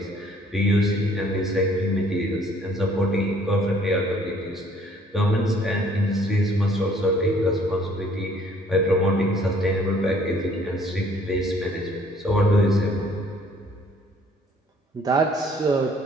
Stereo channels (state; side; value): normal; both; correlation 0.59